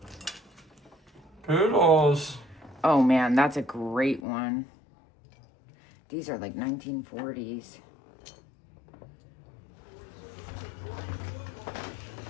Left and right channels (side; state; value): right; drops out; at 4.2 s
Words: Poodles. Oh man, that's a great one. These are like 1940s.